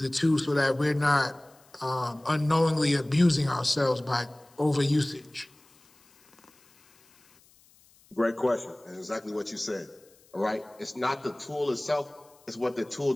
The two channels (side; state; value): left; noise; hiss, 30 dB below the sound